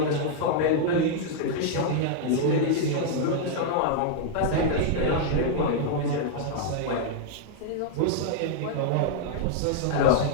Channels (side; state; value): both; different; correlation 0.00